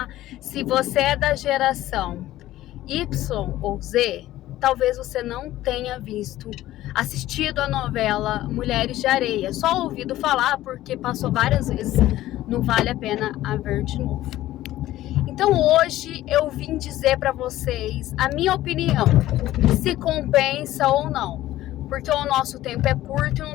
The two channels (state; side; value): quieter; right; 14.9 dB